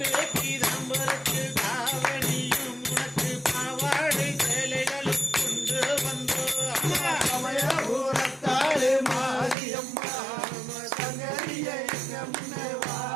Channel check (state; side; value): drops out; left; at 9.6 s